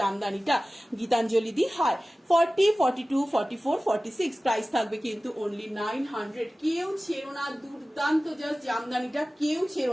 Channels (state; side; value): normal; both; correlation 0.97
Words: গীতাঞ্জলি দি। হাই 40 42 44 46, প্রাইস থাকবে কিন্তু অনলি 900। কেউ ছেড়ো না, দুর্দান্ত জাস্ট জামদানিটা, কেউ